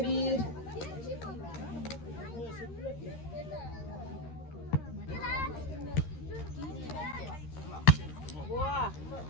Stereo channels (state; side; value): late; right; 13 ms